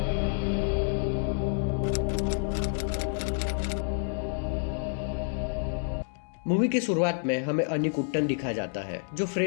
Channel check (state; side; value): silent; right; 59 dB below the other